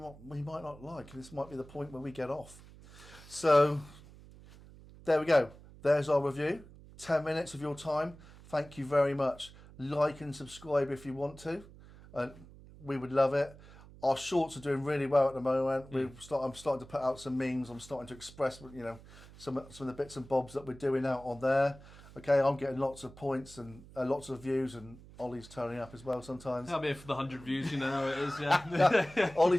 not like. This might be the point where we get off. So there we go. There's our review. 10 minutes of your time. Thank you very much. Like and subscribe if you want to. We would love it. Our shorts are doing really well at the moment. I'm starting to put out some memes. I'm starting to express, some of the bits and bobs that we're doing out on there. Okay, I'm getting lots of points and lots of views, and Ollie's turning up as well sometimes. I'm here for the 100 views, you know how it is. Yeah.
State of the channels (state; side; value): noise; right; hum, 20 dB below the sound